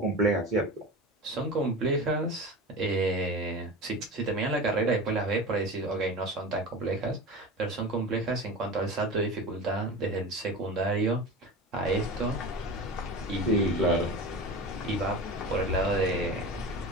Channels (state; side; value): normal; both; correlation 0.30